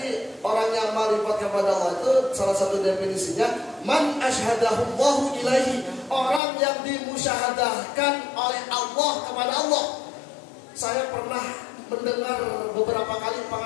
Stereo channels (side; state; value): right; drops out; at 6.4 s